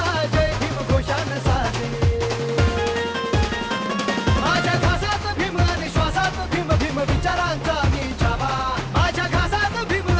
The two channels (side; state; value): both; identical; correlation 1.00